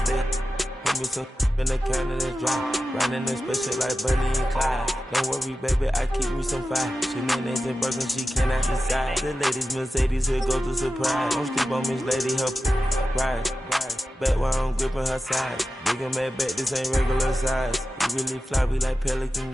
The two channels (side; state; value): both; normal; correlation 0.93